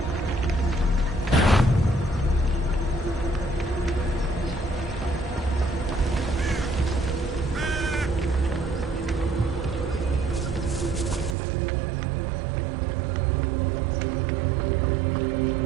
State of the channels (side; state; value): left; drops out; at 11.4 s